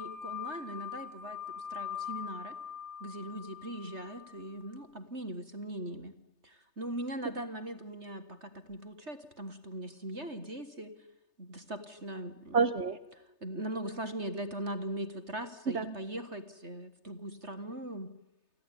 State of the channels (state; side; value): late; left; 3.3 ms